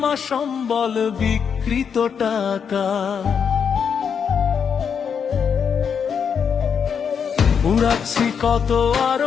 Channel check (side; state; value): right; quieter; 7.0 dB